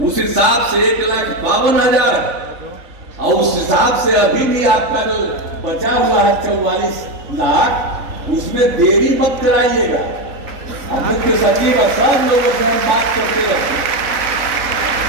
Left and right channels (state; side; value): late; left; 3.5 ms